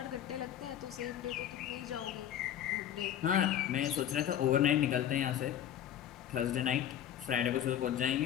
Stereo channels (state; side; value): quieter; right; 10.6 dB